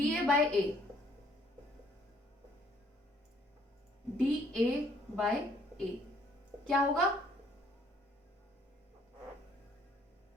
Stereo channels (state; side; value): normal; both; correlation 0.63